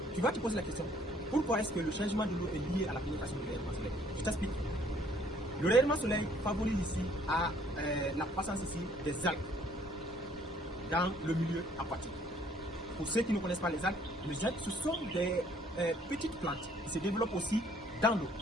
tu vas te poser la question, pourquoi est-ce que le changement de l'eau est lié à la pénétration du rayonnement solaire? Je t'explique. Le rayonnement solaire favorise ici à la croissance ici des algues dans le milieu aquatique. Pour ceux qui ne connaissent pas les algues ce sont des petites plantes qui se développent aussi dans l'eau.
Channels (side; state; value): both; normal; correlation 0.61